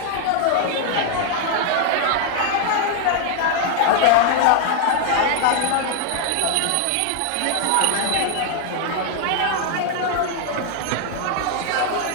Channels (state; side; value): different; both; correlation 0.00